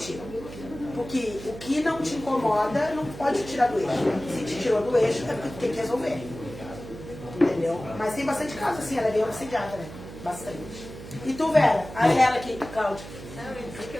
ti. Porque o que não te incomoda não pode te tirar do eixo. Se te tirou do eixo, é porque tu tem que resolver. Entendeu? Mas tem bastante casos assim, ela é bem obsediada, né? Bastante. E tu, Vera? A ela aqui, Cláudia. Não, eu disse que eu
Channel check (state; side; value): noise; right; hum, 13 dB below the sound